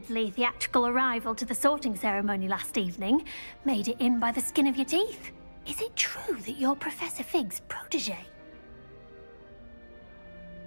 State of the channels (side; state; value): both; inverted; correlation -1.00